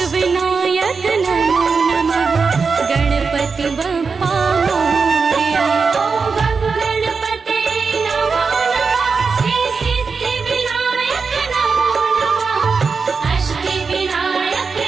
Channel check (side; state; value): left; quieter; 5.0 dB